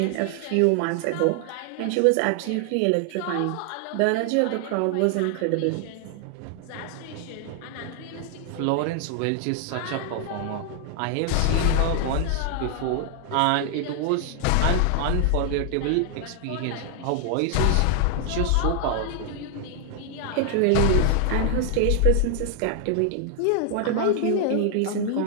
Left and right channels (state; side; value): different; both; correlation 0.00